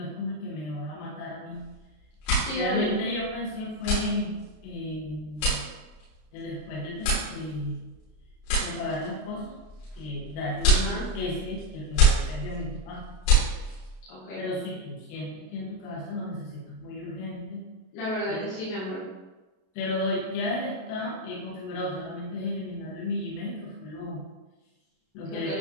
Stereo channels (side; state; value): right; late; 33 ms